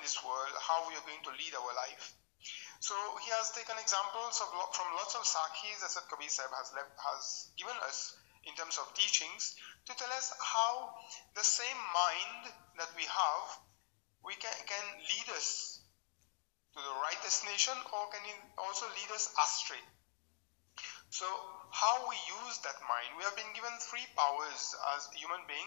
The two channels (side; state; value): right; silent; digital silence